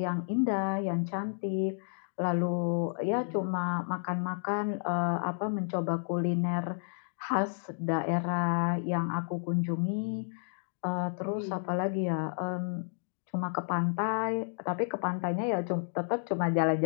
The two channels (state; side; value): silent; right; digital silence